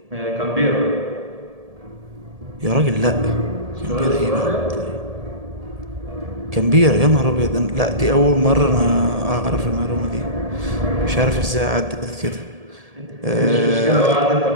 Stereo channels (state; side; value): late; left; 1.7 ms